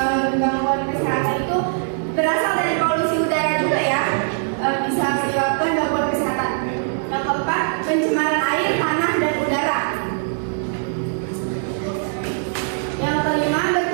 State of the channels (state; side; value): silent; left; digital silence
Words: Gangguan kesehatan itu berasal dari polusi udara juga ya, bisa menyebabkan gangguan kesehatan. Yang keempat, pencemaran air, tanah, dan udara. Yang kelima,